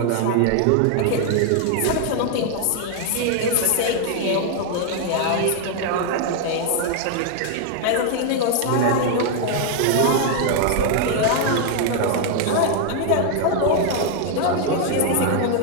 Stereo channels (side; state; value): both; different; correlation 0.00